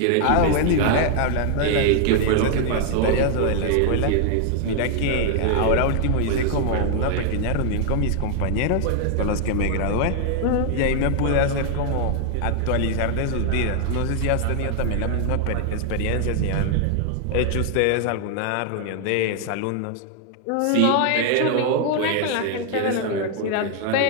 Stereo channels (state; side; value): different; both; correlation 0.00